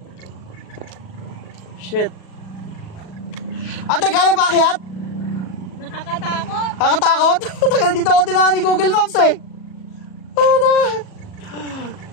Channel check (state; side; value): late; right; 37 ms